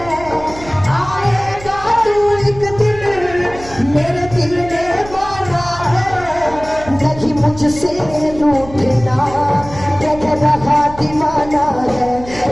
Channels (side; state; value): right; noise; hum, 16 dB below the sound